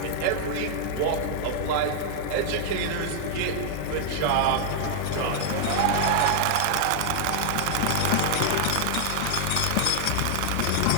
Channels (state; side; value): different; both; correlation 0.00